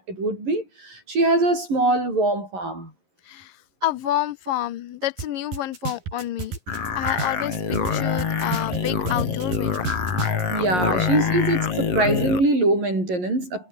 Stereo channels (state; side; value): late; left; 11 ms